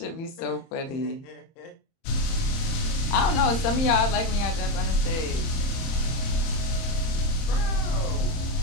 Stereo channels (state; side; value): late; right; 30 ms